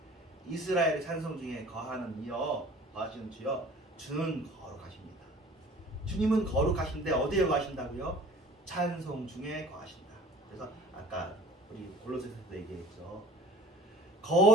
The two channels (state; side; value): normal; both; correlation 0.46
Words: 이스라엘의 찬송 중에 거하는 이여 거하시는 주여 주는 거룩하십니다. 주님은 거룩하신데 어디에 거하신다고요? 찬송 중에 거하신다. 그래서 아까 우리 골로새서도 얘기했죠.